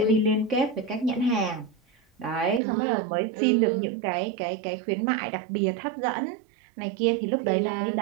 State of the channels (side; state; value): left; drops out; at 2.6 s